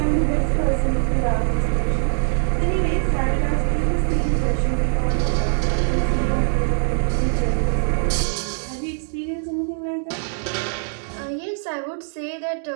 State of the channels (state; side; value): silent; left; digital silence